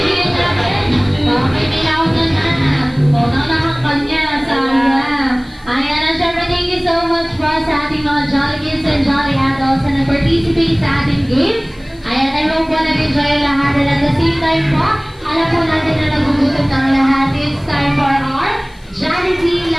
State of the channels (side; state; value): left; noise; hiss, 29 dB below the sound